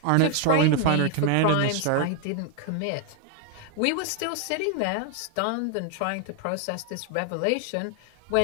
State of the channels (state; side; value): different; both; correlation 0.00